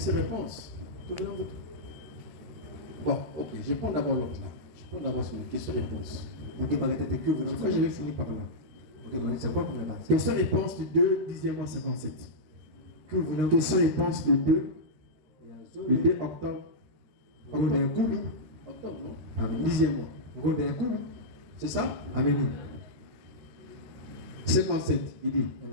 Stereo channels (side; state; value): left; late; 13 ms